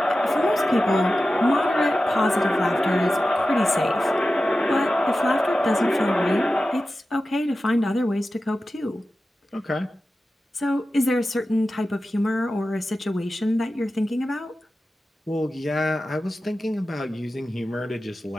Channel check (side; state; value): both; normal; correlation 0.94